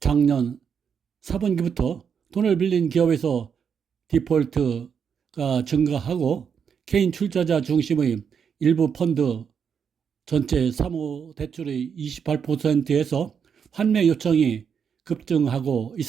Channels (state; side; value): quieter; left; 7.0 dB